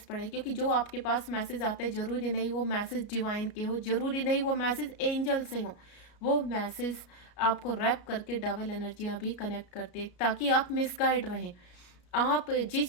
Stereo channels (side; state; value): right; late; 33 ms